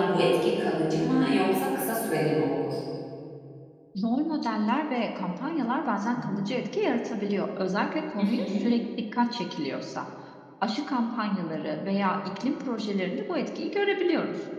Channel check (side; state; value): both; identical; correlation 1.00